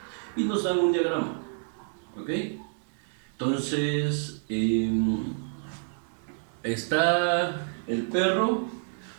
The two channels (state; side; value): silent; left; 59 dB below the other